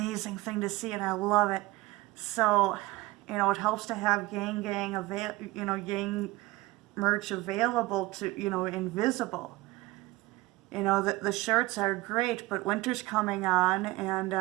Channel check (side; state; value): left; quieter; 20.0 dB